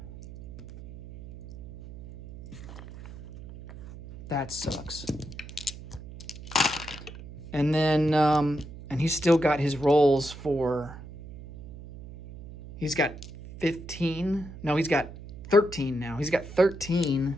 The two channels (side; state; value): right; noise; hum, 15 dB below the sound